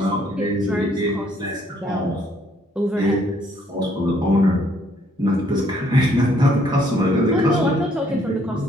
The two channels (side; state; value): both; normal; correlation 0.66